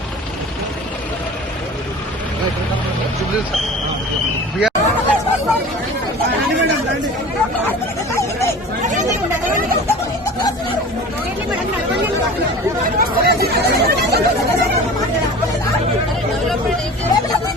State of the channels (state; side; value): normal; both; correlation 0.39